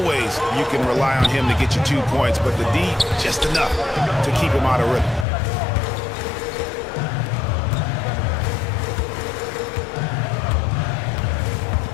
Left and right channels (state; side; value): drops out; right; at 5.2 s